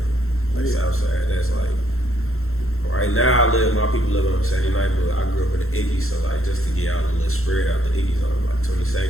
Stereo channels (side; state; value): right; late; 0.62 ms